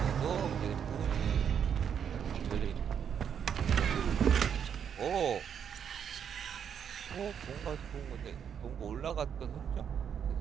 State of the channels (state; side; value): quieter; left; 8.0 dB